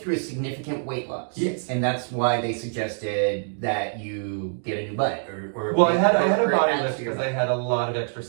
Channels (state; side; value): silent; left; 62 dB below the other